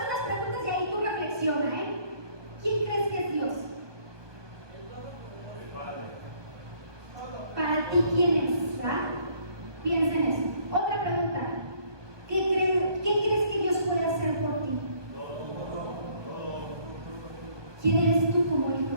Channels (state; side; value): late; left; 1.2 ms